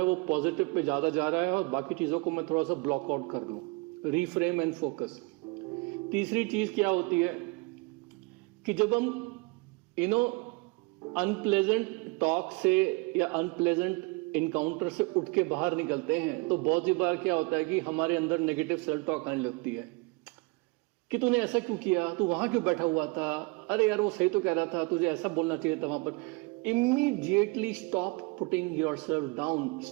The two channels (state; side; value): quieter; left; 27.5 dB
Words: वो पॉजिटिव पे ज्यादा जा रहा है और बाकी चीजों को मैं थोड़ा सा ब्लॉक आउट कर लूं. Reframe and focus. तीसरी चीज क्या होती है कि जब हम अनप्लेजेंट टॉक से या अनप्लेजेंट इनकाउंटर से उठ के बाहर निकलते हैं तो बहुत सी बार क्या होता है कि हमारे अंदर नेगेटिव सेल्फ टॉक आने लगती है कि तूने ऐसा क्यों किया, तू वहां क्यों बैठा हुआ था, अरे यार वो सही तो कह रहा था, तुझे ऐसा बोलना चाहिए था वहां पर. Immediately stop putting yourself down,